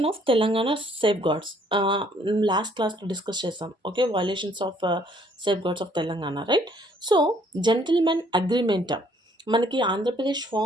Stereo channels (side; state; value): both; normal; correlation 0.63